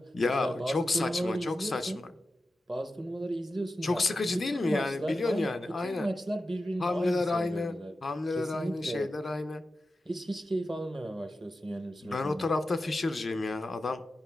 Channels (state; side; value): normal; both; correlation 0.92